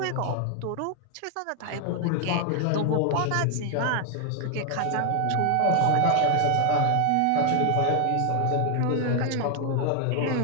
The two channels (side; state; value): both; different; correlation 0.00